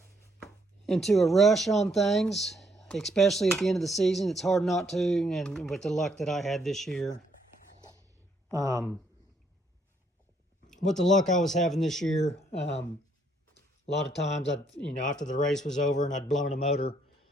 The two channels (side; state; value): both; normal; correlation 0.71